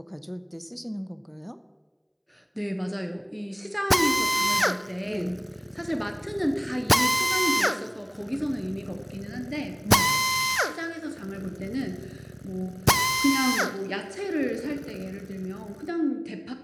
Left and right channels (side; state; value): both; identical; correlation 1.00